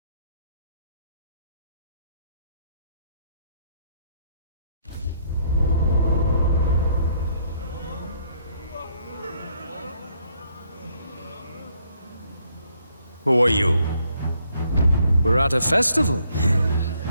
Who are you? We're at a festival.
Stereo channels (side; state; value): both; inverted; correlation -0.69